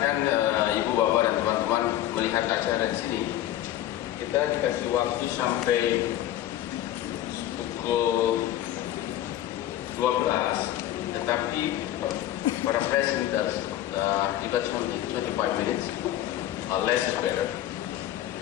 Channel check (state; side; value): quieter; right; 13.0 dB